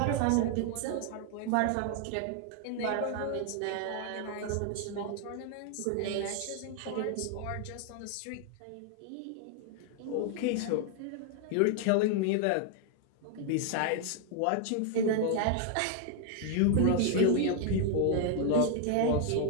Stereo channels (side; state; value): both; different; correlation 0.00